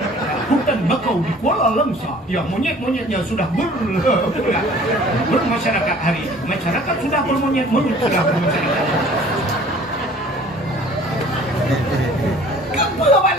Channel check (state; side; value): normal; both; correlation 0.51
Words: hutan bakau di Kuala Langsa yang monyet-monyetnya sudah bermasyarakat hari ini. Masyarakat sudah bermonyet sudah bermasyarakat. Kamu